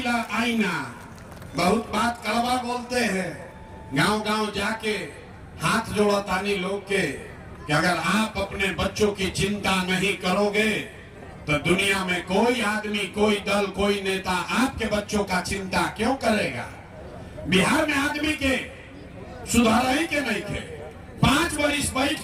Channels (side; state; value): both; identical; correlation 1.00